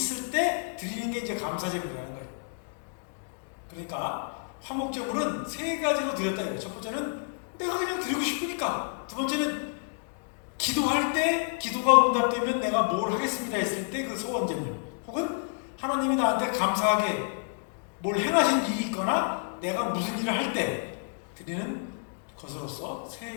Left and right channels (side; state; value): right; silent; digital silence